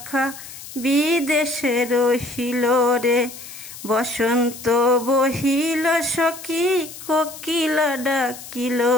বিদেশে রহিল রে। বসন্ত বহিল সখী কোকিলা ডাকিল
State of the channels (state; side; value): noise; left; hiss, 14 dB below the sound